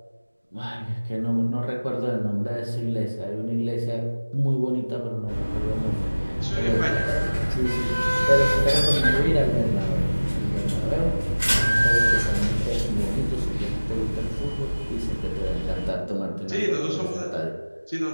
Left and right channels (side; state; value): both; inverted; correlation -1.00